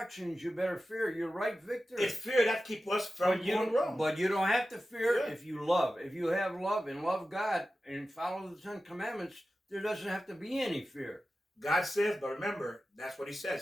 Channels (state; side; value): normal; both; correlation 0.94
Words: you better fear. You're right, Victor. It's fear that keeps us from going wrong. But you don't have to fear if you love. If you have love and love God and follow the 10 Commandments, there doesn't have to be any fear. God says, but remember, that's what He